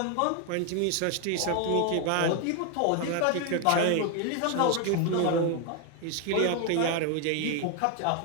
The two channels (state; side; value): different; both; correlation 0.01